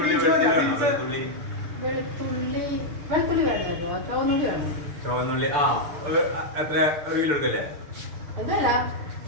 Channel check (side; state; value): left; late; 6.7 ms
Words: വെളുത്തുള്ളി വേണമല്ലോ ചുവന്നുള്ളി വേണം ചുവന്നുള്ളി എത്ര ഒരു കിലോ എടുക്കല്ലേ എന്തല്ല